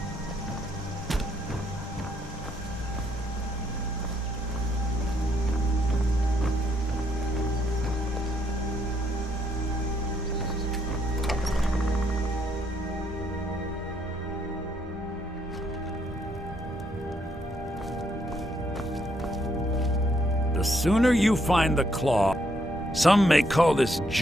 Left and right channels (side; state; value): both; normal; correlation 0.72